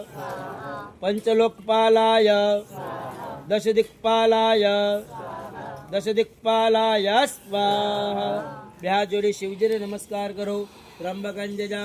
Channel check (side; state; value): both; identical; correlation 1.00